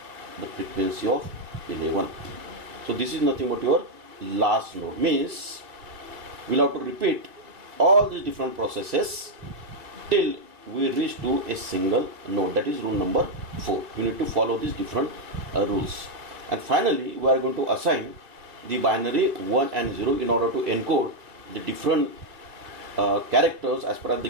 the frequency of 11. So this is nothing but your last node. Means we'll have to repeat all these different processes till we reach to a single node. That is rule number 4. You need to follow these different rules. And finally, we are going to assign the binary 1 and 0 in order to encode the different characters as per as the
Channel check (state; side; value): late; left; 2.6 ms